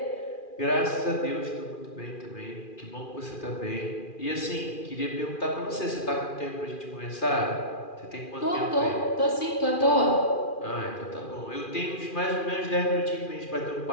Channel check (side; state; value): right; late; 2.4 ms